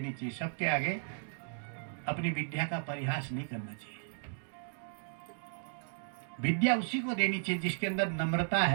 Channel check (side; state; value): left; silent; digital silence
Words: चाहिए। सबके आगे अपनी विद्या का परिहास नहीं करना चाहिए। विद्या उसी को देनी चाहिए जिसके अंदर नम्रता